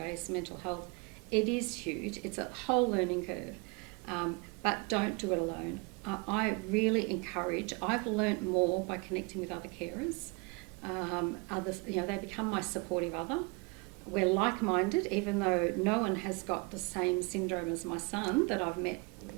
mental health. It is huge. It's a whole learning curve. But don't do it alone. I really encourage, I've learnt more by connecting with other carers. Others, they become my supportive other. We're like-minded, even though no one has got the same syndrome as my son that I've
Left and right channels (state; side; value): quieter; left; 30.0 dB